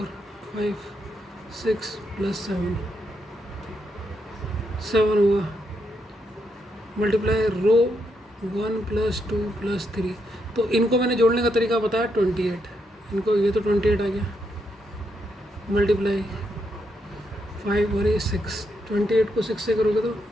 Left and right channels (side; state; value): both; normal; correlation 0.80